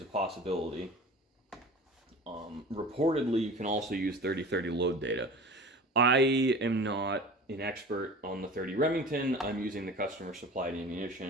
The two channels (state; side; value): normal; both; correlation 0.38